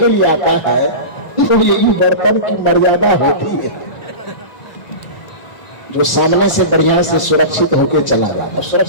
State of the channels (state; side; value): late; right; 1.5 ms